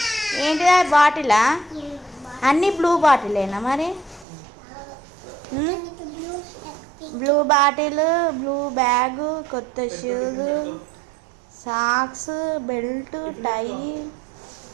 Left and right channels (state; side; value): drops out; left; at 4.2 s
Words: ఏంటిదా బాటిలా? అన్ని బ్లూ బాటిలేనా మరి? బ్లూ బాటిల్, బ్లూ బ్యాగ్, కొత్త షూస్, సాక్స్, బెల్ట్, టై,